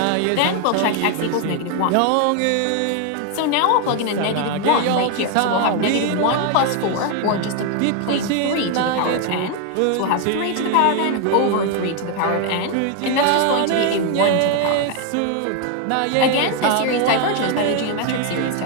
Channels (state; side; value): different; both; correlation 0.01